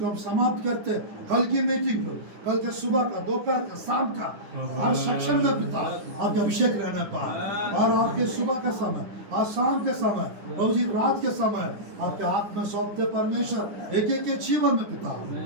हम समाप्त करते। कल की मीटिंग को, कल के सुबह का, दोपहर का, शाम का, हर सेक्शन में पिता आपके अभिषेक रहने पाए, और आपके सुबह का समय और शाम के समय, प्रभु जी रात के समय आपके हाथ में सौंपते परमेश्वर। एक एक के जीवन में पिता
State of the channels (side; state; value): left; late; 9.8 ms